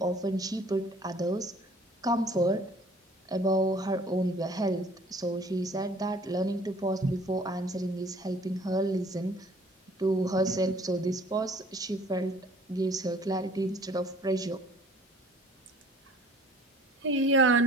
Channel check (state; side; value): normal; both; correlation 0.53